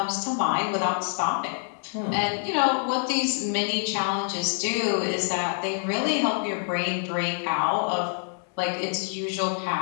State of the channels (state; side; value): silent; right; 58 dB below the other